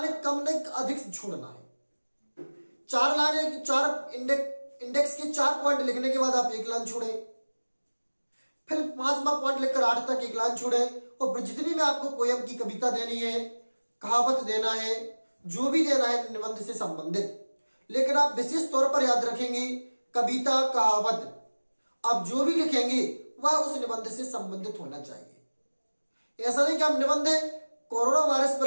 कम नहीं अधिक छोड़ना है। 4 लाइनें, 4 इंडेक्स के 4 पॉइंट लिखने के बाद आप 1 लाइन छोड़े, फिर 5वां पॉइंट लिखकर 8 तक 1 लाइन छोड़े। और जितनी भी आपको पोयम की कविता देनी है, कहावत देना है, जो भी देना है निबंध से संबंधित, लेकिन आप विशेष तौर पर याद रखेंगे कविता, कहावत, आप जो भी लिखेंगे वह उस निबंध से संबंधित होना चाहिए। ऐसा नहीं कि हम निबंध कोरोना वायरस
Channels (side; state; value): both; inverted; correlation -1.00